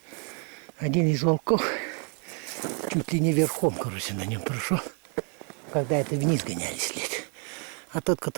один из волков чуть ли не верхом, короче, на нем прошел, когда это вниз гоняли след. А тот,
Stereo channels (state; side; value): quieter; left; 38.4 dB